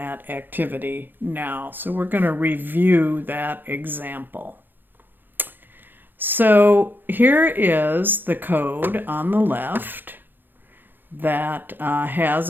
activity now. So we're going to review that example. So here is the code on the left that has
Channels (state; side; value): late; left; 0.093 ms